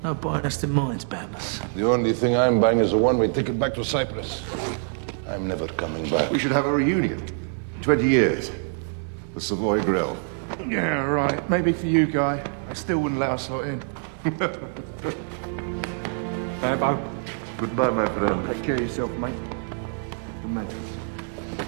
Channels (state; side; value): silent; left; 62 dB below the other